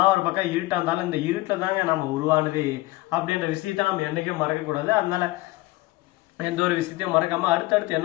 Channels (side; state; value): right; quieter; 19.6 dB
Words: ஒரு பக்கம் இருட்டா இருந்தாலும் இந்த இருட்டுல தாங்க நம்ம உருவானது அப்படின்ற விஷயத்த நம்ம என்னைக்கும் மறக்க கூடாது. அதனால எந்த ஒரு விஷயத்தையும் மறக்காம அடுத்தடுத்து